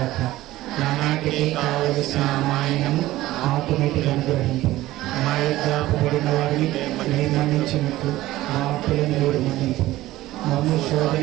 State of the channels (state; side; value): quieter; left; 16.3 dB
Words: నానాటికి కావలసిన మాయనము మాకు నీటికి అనుగ్రహింపు. మా యొక్క అప్పుబడిన వారిని మీరు మన్నించినట్లు మా అప్పులను మీరు మన్నింపు. మమ్ము శోధన